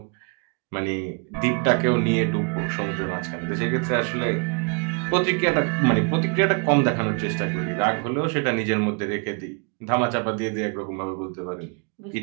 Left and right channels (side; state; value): left; quieter; 36.7 dB